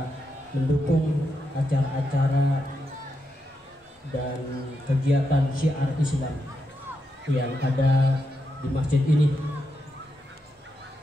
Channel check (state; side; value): normal; both; correlation 0.84